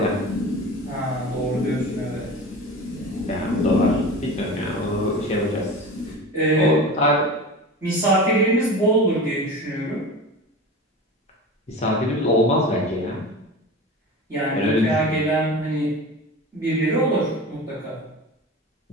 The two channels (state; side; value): normal; both; correlation 0.32